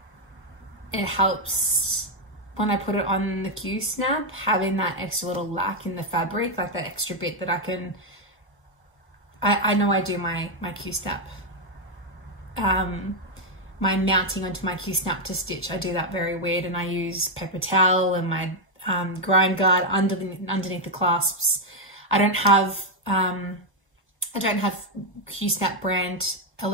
it helps when I put it on the Q-snap, having that extra little lack in the fabric, like that extra bit that I can, I know I do my Q-snap, my mounting onto my Q-snap to stitch, I do that very weird, and I use paper towel and my grind guard underneath the clasps. I don't have Q-snap brand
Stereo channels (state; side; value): normal; both; correlation 0.02